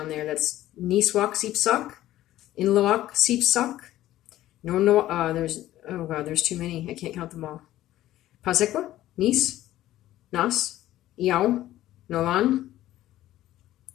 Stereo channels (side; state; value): right; quieter; 14.3 dB